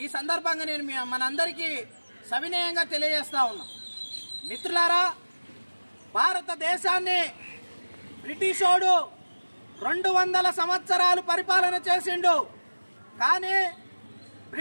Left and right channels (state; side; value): inverted; both; correlation -1.00